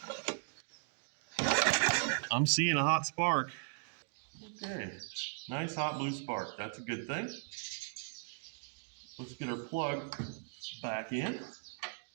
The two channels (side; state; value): left; silent; digital silence